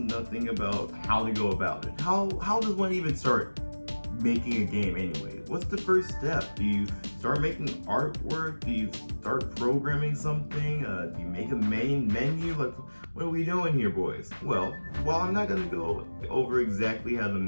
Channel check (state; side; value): inverted; both; correlation -1.00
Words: about how to go about it. How does one even start making a game anyway? What's the first step? Do you start making artwork? Do you start programming something? Do you make a main menu? Like, what are we doing here, boys? Well, while I'm not going to go over exactly how to